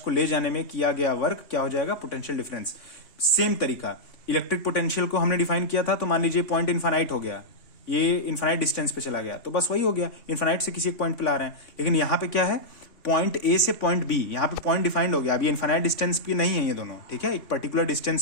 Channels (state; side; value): late; right; 3.5 ms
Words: ले जाने में किया गया वर्क क्या हो जाएगा? Potential difference. सेम तरीका, इलेक्ट्रिक पोटेंशियल को हमने डिफाइन किया था, तो मान लीजिए पॉइंट इनफाइनाइट हो गया, ये इनफाइनाइट डिस्टेंस पे चला गया, तो बस वही हो गया, इनफाइनाइट से किसी एक पॉइंट पे ला रहे हैं। लेकिन यहाँ पे क्या है? पॉइंट ए से पॉइंट बी, यहाँ पे पॉइंट डिफाइंड हो गया, अभी इनफाइनाइट डिस्टेंस पे नहीं है ये दोनों। ठीक है, एक पर्टिकुलर